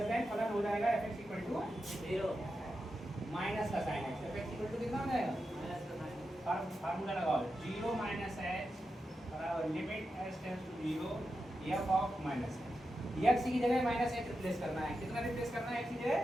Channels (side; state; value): both; normal; correlation 0.89